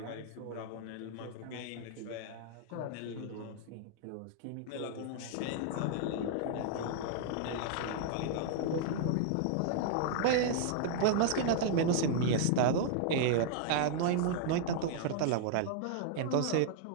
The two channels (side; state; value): both; different; correlation -0.01